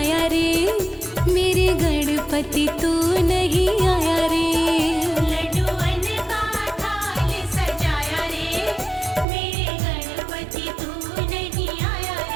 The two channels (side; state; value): left; drops out; at 9.2 s